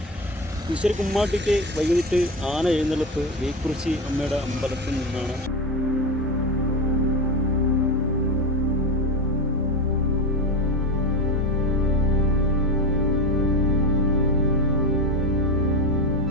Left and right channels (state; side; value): normal; both; correlation 0.20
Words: പുതുശ്ശേരി കുമ്മാട്ടിക്ക് വൈകിട്ട് ആന എഴുന്നള്ളിപ്പ് വേക്കുറിച്ചി അമ്മയുടെ അമ്പലത്തിൽ നിന്നാണ്.